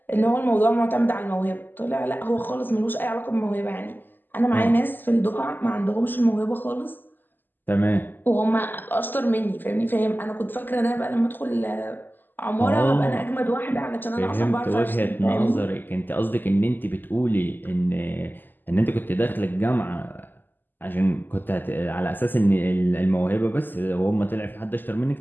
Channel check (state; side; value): late; right; 0.091 ms